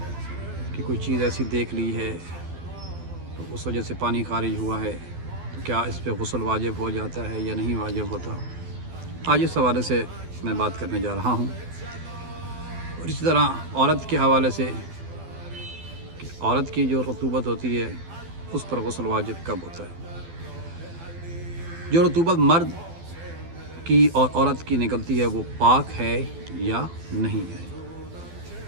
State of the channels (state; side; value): late; left; 12 ms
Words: کہ کوئی چیز ایسی دیکھ لی ہے تو اس وجہ سے پانی خارج ہوا ہے، تو کیا اس پہ غسل واجب ہو جاتا ہے یا نہیں واجب ہوتا؟ آج اس حوالے سے میں بات کرنے جا رہا ہوں، اور اسی طرح عورت کے حوالے سے کہ عورت کی جو رطوبت ہوتی ہے اس پر غسل واجب کب ہوتا ہے۔ جو رطوبت مرد کی اور عورت کی نکلتی ہے وہ پاک ہے یا نہیں ہے؟